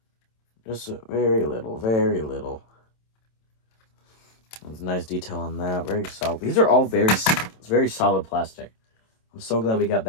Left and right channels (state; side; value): late; right; 27 ms